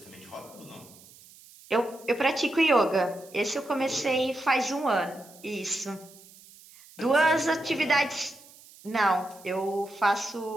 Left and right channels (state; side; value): noise; right; hiss, 23 dB below the sound